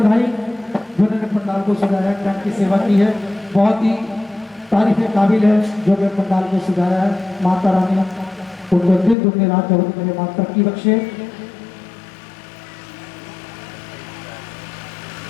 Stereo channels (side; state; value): right; drops out; at 9.2 s